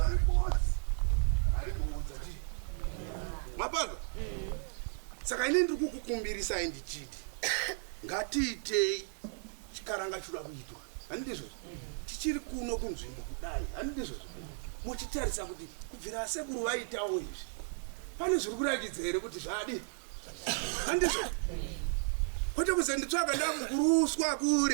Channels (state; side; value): silent; left; 55 dB below the other